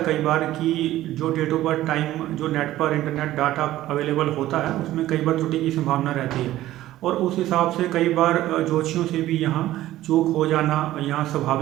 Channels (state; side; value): quieter; left; 14.7 dB